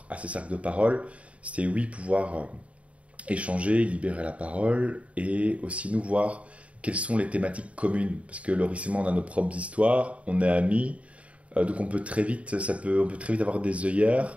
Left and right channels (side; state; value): left; late; 0.064 ms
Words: à ces cercles de parole, c'était pouvoir échanger, libérer la parole, et aussi nous voir quelles sont les thématiques communes. Parce que Loris et moi, on a nos propres histoires, on est amis, donc on peut très vite avoir des œillères.